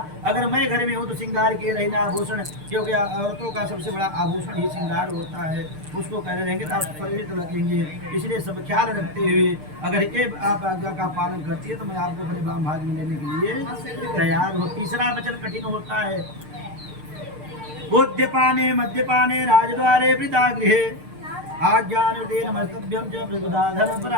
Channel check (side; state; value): left; late; 6.6 ms